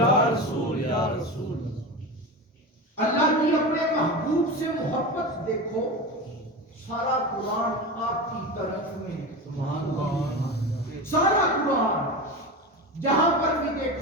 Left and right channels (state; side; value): normal; both; correlation 0.25